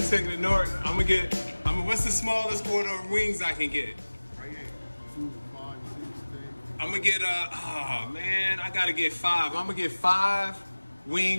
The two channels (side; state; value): both; inverted; correlation -1.00